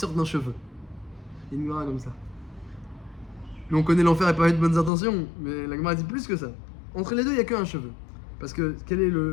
d'un cheveu. Il y a une Gemara comme ça. Nous, on connaît l'enfer et pas avec de bonnes intentions, mais la Gemara dit plus que ça. Entre les deux, il n'y a qu'un cheveu. Parce que quel est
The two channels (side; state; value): right; drops out; at 4.9 s